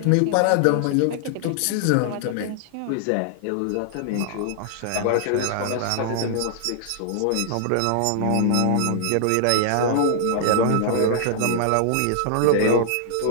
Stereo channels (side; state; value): both; different; correlation -0.01